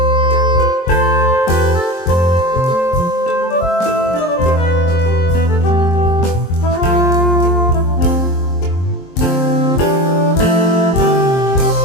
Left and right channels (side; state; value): right; late; 23 ms